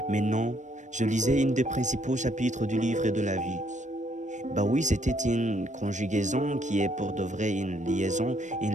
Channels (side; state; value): left; late; 0.35 ms